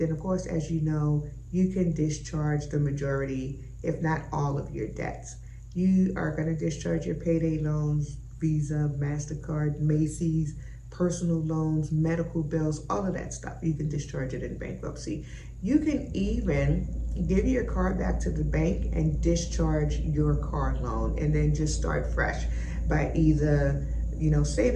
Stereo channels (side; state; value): both; identical; correlation 1.00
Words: of course, as you know, you can discharge the majority, if not all of your debts. You are going to discharge your payday loans, Visa, MasterCard, Macy's, personal loans, medical bills, all of that stuff. You can discharge it in bankruptcy. You can even give your car back to the bank and discharge your car loan and then just start fresh by either